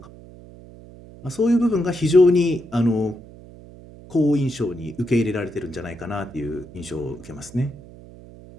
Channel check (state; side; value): noise; right; hum, 19 dB below the sound